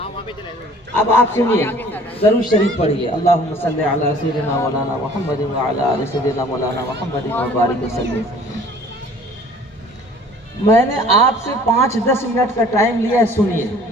अब आप सुनिए, दरूद शरीफ पढ़िए। अल्लाहुम्मा सल्ली अला सय्यिदिना मौलाना मुहम्मद व अला आलि सय्यिदिना मौलाना मुहम्मद व बारिक वसल्लम। मैंने आपसे 5-10 मिनट का टाइम लिया है, सुनिए।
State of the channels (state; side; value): normal; both; correlation 0.51